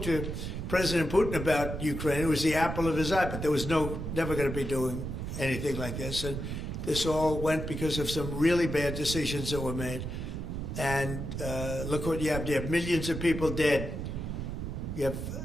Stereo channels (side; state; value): right; noise; rumble, 5 dB below the sound